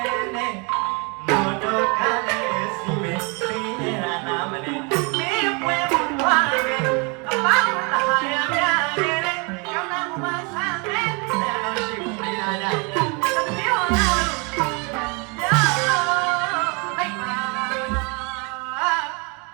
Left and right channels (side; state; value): left; quieter; 31.9 dB